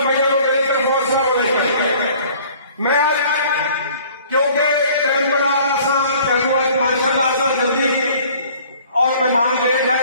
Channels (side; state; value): both; inverted; correlation -0.52